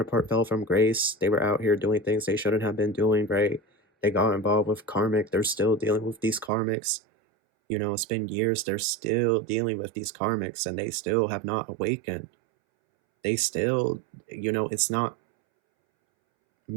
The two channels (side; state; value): left; drops out; at 6.5 s